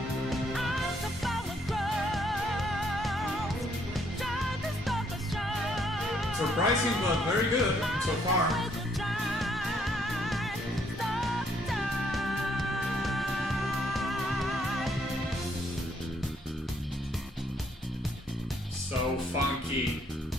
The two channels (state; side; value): normal; both; correlation 0.69